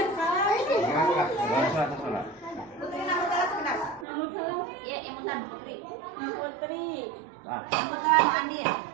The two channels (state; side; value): drops out; left; at 4.0 s